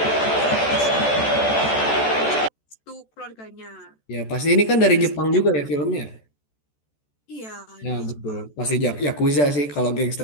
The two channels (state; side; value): late; right; 14 ms